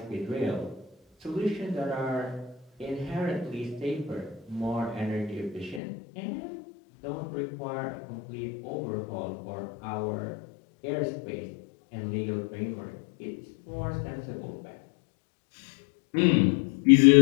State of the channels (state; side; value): drops out; right; at 5.8 s